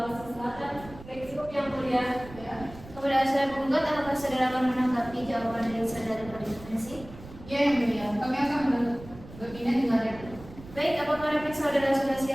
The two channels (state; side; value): noise; right; rumble, 17 dB below the sound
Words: Selatan. Cukup yang mulia. Ya. Kepada saudara penggugat, apakah saudara akan menanggapi jawaban dari saudara terduga intervensi? Ya yang mulia, kami akan menanggapinya dengan replik. Baik, apakah replik saudara sudah